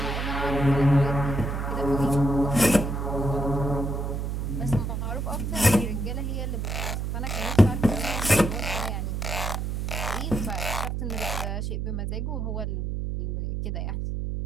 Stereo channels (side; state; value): right; noise; hum, 2 dB below the sound